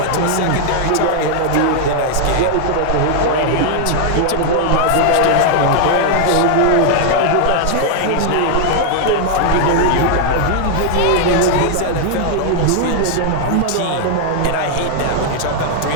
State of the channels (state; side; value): different; both; correlation 0.00